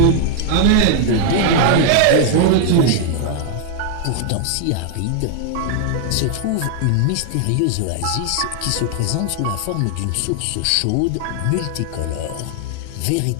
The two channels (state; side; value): different; both; correlation 0.00